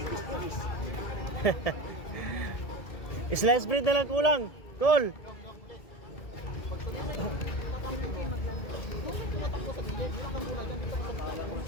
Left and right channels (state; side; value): late; right; 1.7 ms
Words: Slice bread na lang kulang. Call.